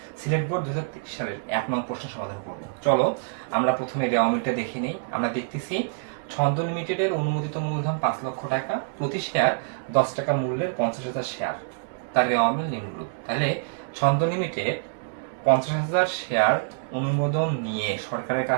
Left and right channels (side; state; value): left; silent; digital silence